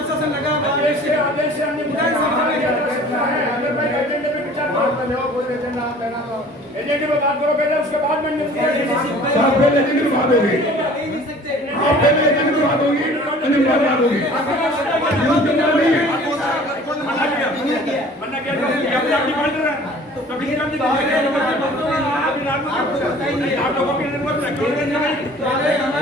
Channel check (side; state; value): both; normal; correlation 0.48